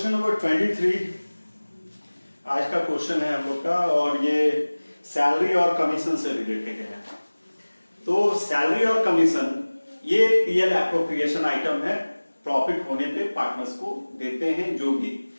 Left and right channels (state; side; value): inverted; both; correlation -1.00